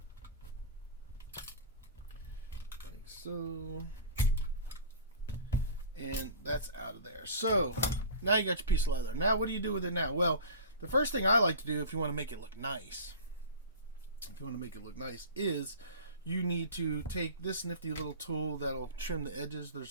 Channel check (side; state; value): both; inverted; correlation -0.36